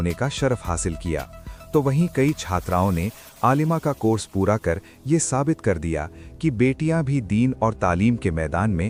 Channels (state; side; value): identical; both; correlation 1.00